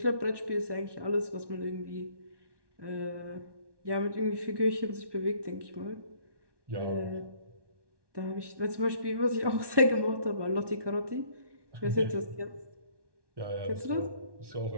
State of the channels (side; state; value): left; late; 1.2 ms